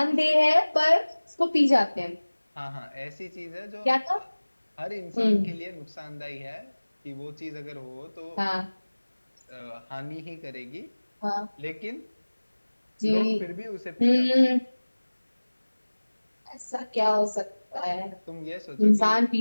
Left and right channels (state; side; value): inverted; both; correlation -1.00